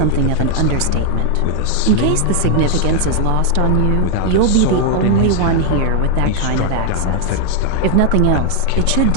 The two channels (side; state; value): both; different; correlation 0.00